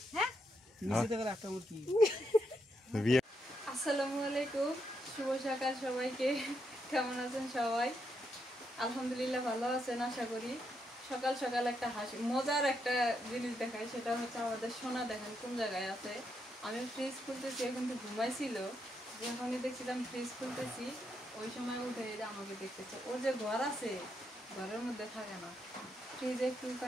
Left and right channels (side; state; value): both; normal; correlation 0.80